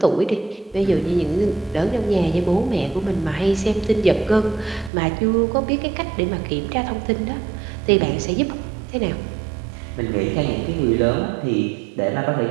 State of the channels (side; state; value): left; drops out; at 4.9 s